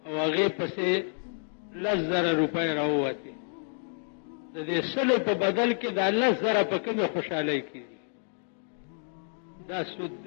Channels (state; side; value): silent; right; 58 dB below the other